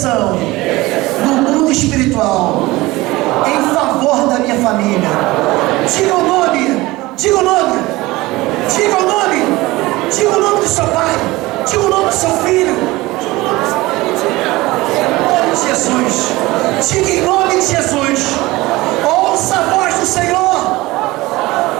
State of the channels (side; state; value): left; quieter; 20.1 dB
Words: no mundo espiritual em favor da minha família. Diga o nome, diga o nome, diga o nome, diga o nome do seu pai, diga o nome do seu filho. Em nome de Jesus, diga em nome de Jesus, ouça a voz do Senhor,